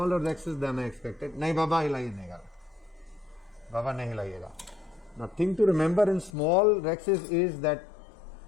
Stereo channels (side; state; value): right; drops out; at 6.3 s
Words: rexis than I expected. Nahi baba hilaiye Baba nahi hilayega. Now thing to remember in small rexis is that